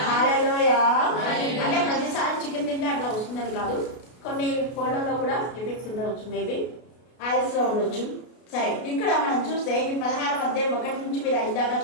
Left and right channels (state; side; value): late; right; 33 ms